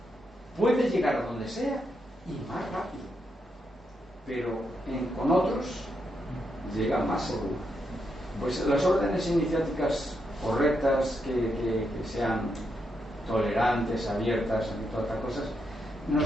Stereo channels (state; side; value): normal; both; correlation 0.82